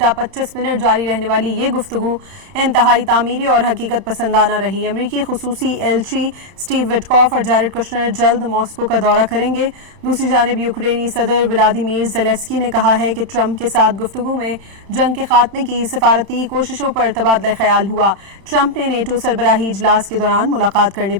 25 منٹ جاری رہنے والی یہ گفتگو انتہائی تعمیری اور حقیقت پسندانہ رہی۔ امریکی خصوصی ایلچی سٹیو وٹکوف اور جیرڈ کشنر جلد ماسکو کا دورہ کریں گے۔ دوسری جانب یوکرینی صدر ولادیمیر زیلنسکی نے کہا ہے کہ ٹرمپ کے ساتھ گفتگو میں جنگ کے خاتمے کی سفارتی کوششوں پر تبادلہ خیال ہوا۔ ٹرمپ نے نیٹو سربراہی اجلاس کے دوران ملاقات کرنے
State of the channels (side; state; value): left; late; 31 ms